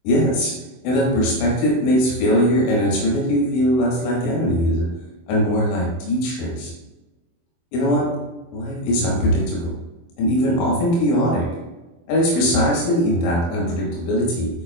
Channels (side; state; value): right; late; 24 ms